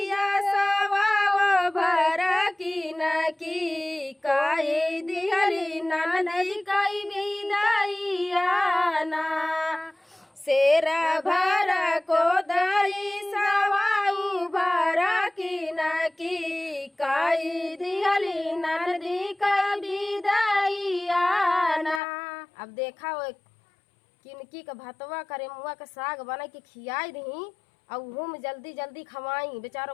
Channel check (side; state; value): right; drops out; at 22.0 s